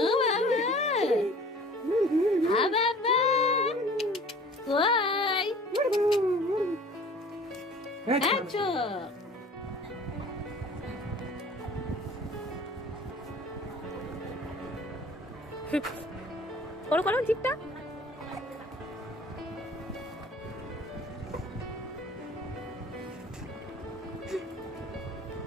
Baba. Why? Acho. করো করো জিপটা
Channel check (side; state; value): both; normal; correlation 0.47